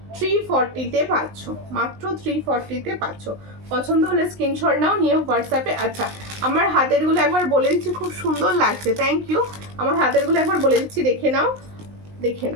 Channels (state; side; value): late; left; 19 ms